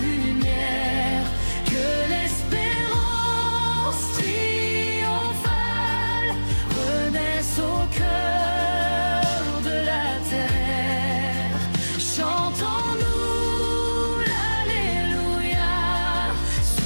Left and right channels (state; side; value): inverted; both; correlation -1.00